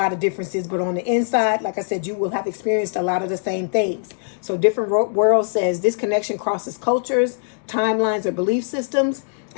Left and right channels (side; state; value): right; silent; digital silence